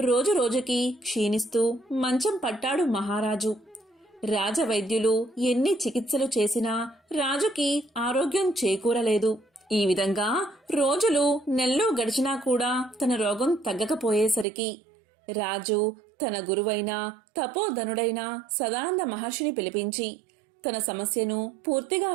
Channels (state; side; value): drops out; left; at 14.5 s